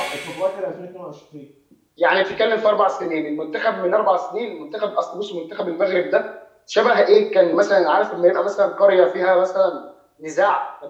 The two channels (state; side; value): identical; both; correlation 1.00